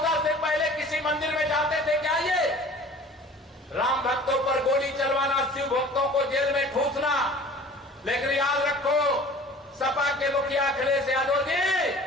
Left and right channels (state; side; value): normal; both; correlation 0.45